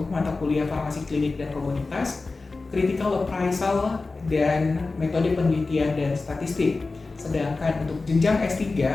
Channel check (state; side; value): quieter; right; 3.7 dB